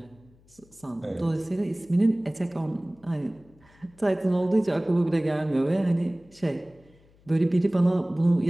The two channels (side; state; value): left; noise; hum, 29 dB below the sound